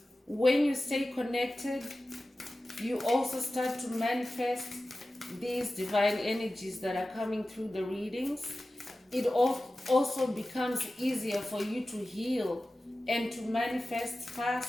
When you stay connected, you also start to manifest these divine energies that are coming through the readings. It also becomes easier for you to heal and to manifest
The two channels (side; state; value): both; normal; correlation 0.95